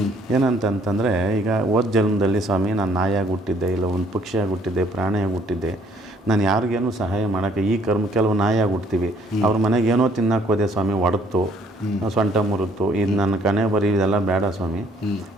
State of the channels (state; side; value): normal; both; correlation 0.63